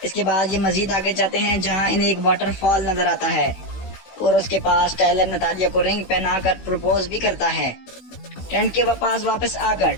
اس کے بعد یہ مزید آگے جاتے ہیں جہاں انہیں ایک واٹر فال نظر آتا ہے اور اس کے پاس ٹائلر نتالیہ کو رنگ پہنا کر پروپوز بھی کرتا ہے۔ ٹینٹ کے پاس واپس آ کر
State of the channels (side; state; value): right; late; 16 ms